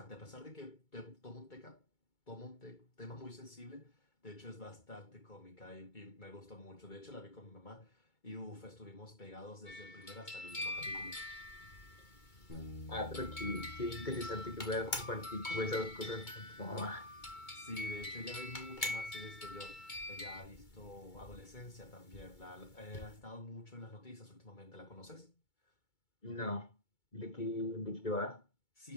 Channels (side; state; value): right; late; 2.2 ms